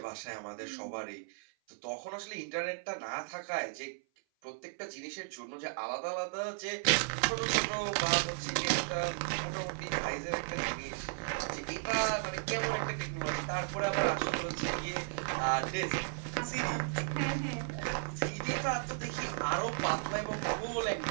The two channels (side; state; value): left; silent; 54 dB below the other